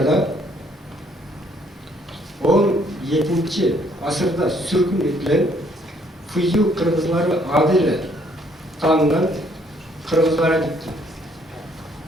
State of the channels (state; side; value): normal; both; correlation 0.66